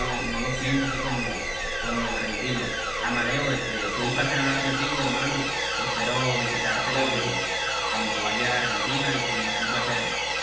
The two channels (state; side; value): noise; left; hum, 17 dB below the sound